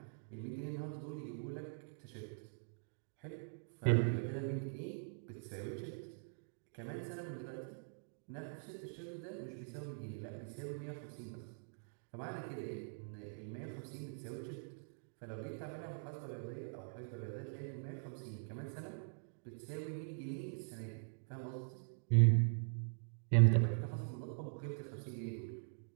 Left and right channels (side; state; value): left; silent; digital silence